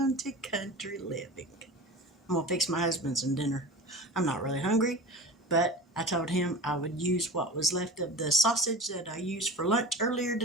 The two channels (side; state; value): both; normal; correlation 0.34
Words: to Country Living. I'm going to fix my husband some dinner. I'm not really hungry, but I told him I would use what was left of the sausage that I used for lunch earlier